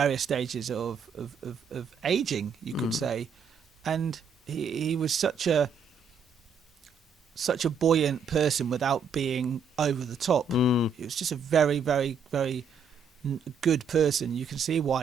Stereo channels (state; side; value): quieter; left; 5.5 dB